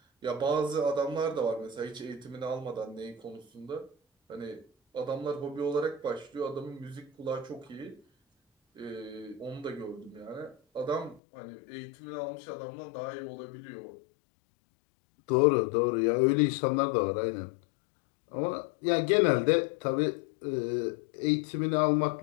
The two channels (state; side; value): drops out; right; at 11.2 s